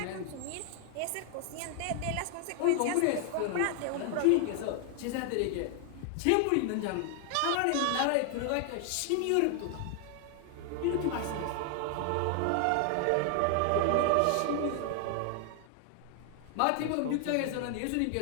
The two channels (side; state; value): both; different; correlation 0.00